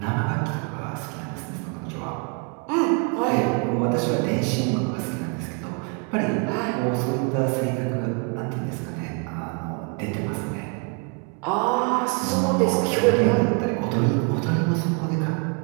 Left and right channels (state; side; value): quieter; left; 35.9 dB